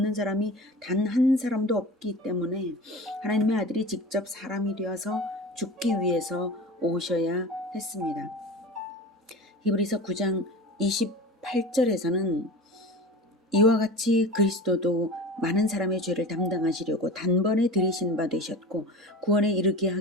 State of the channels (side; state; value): both; normal; correlation 0.33